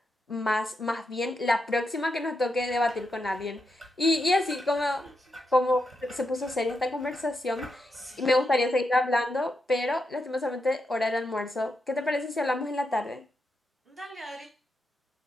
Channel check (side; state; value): both; normal; correlation 0.84